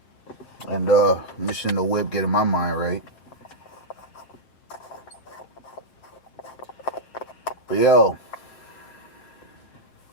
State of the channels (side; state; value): right; late; 7.6 ms